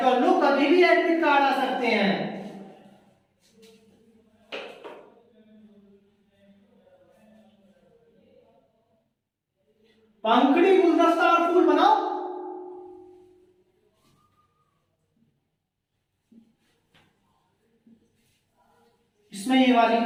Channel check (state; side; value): identical; both; correlation 1.00